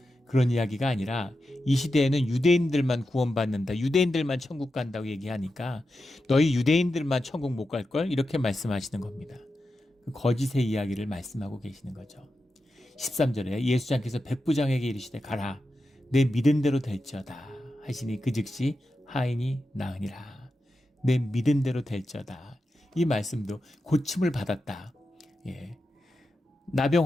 그런 이야기가 아니라 이 시대에는 유대인들만 구원받는다, 유대인들만 천국 간다고 얘기하니까 너희 유대인들만 천국 못 갈걸, 이렇게 말씀하시는 겁니다. 그 거짓의 이야기를 말씀하고 계시는 거죠. 13절에 예수장께서 백부장에게 이르시되 가라, 내 믿은 대로 될지어다 하시니 그 즉시 하인이 나으니라. 내 믿은 대로 될지어다. 이 말씀도 고침을 받았다,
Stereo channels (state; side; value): normal; both; correlation 0.90